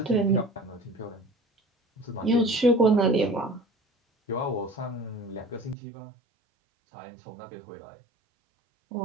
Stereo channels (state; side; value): drops out; left; at 5.8 s